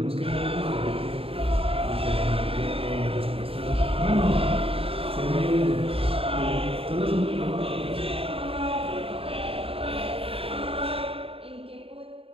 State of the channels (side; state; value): left; late; 0.27 ms